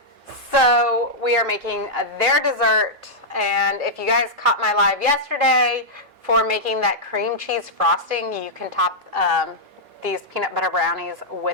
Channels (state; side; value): normal; both; correlation -0.07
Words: So we are making their dessert, and if you guys caught my live yesterday for making that cream cheese frosting, you can top these peanut butter brownies